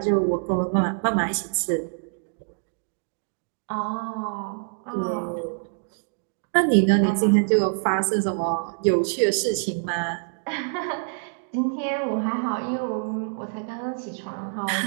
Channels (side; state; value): left; silent; digital silence